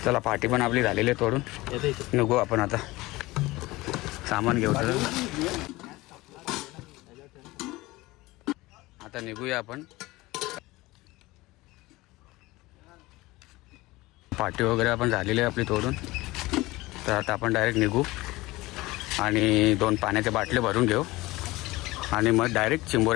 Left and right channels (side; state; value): right; quieter; 20.2 dB